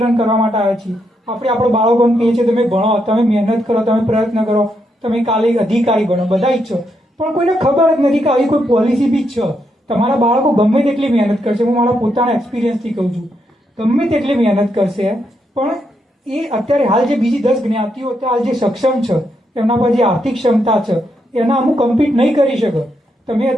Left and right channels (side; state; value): both; normal; correlation 0.80